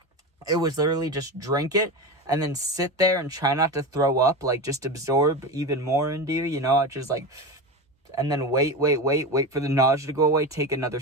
it was literally just drink it and then sit there and try not to throw up, like, just absorb even more into you, I just, like, and then wait for the nausea to go away, take another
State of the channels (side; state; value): both; normal; correlation 0.23